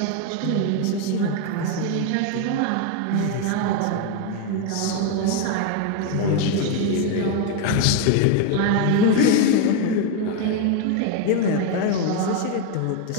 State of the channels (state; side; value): different; both; correlation 0.01